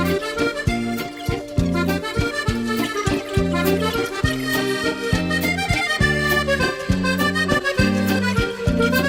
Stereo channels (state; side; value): identical; both; correlation 1.00